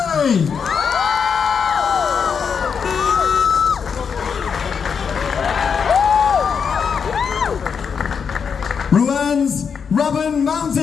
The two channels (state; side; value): quieter; right; 6.5 dB